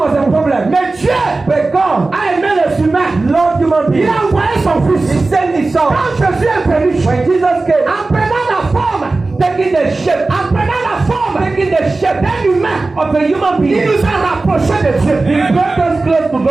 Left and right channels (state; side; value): quieter; left; 3.4 dB